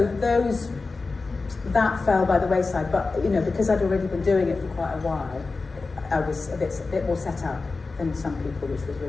that fell by the wayside. But because I'd already been doing it for quite a while, I was a bit more set up than some people, which was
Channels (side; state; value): right; quieter; 3.9 dB